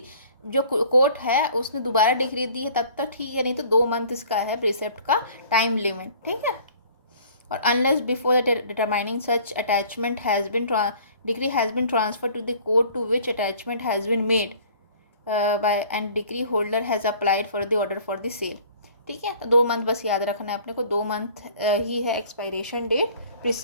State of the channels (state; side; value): inverted; both; correlation -0.51